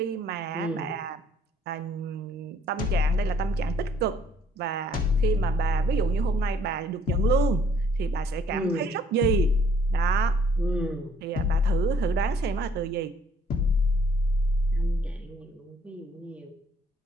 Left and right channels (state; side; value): normal; both; correlation 0.62